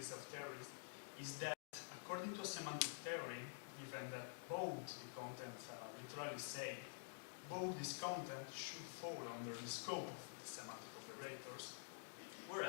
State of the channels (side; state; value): right; silent; digital silence